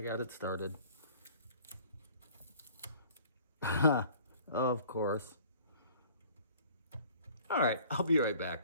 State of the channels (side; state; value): both; inverted; correlation -0.52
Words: got it started. Of course. All right, I'll be right